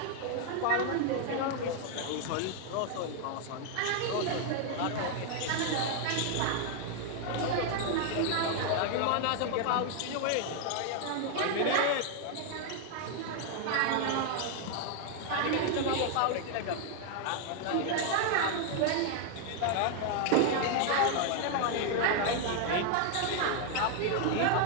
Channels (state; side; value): different; both; correlation 0.00